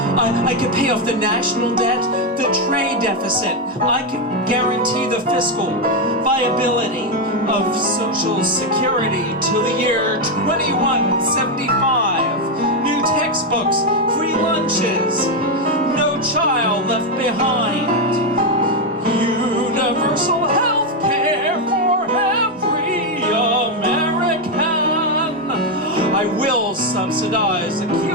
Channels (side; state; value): both; normal; correlation 0.05